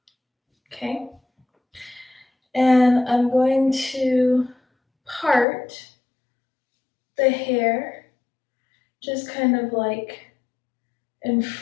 Okay. And I'm going to part the hair just kind of like in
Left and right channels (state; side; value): drops out; right; at 5.5 s